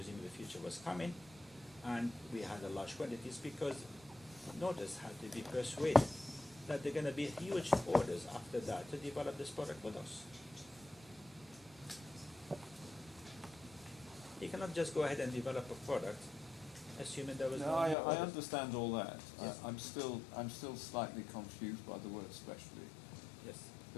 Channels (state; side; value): drops out; right; at 17.9 s